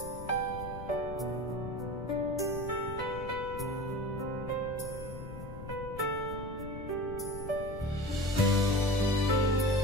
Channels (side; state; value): left; noise; rumble, 10 dB below the sound